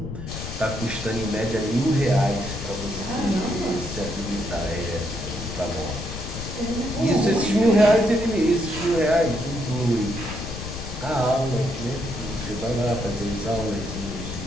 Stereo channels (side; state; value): left; noise; rumble, 8 dB below the sound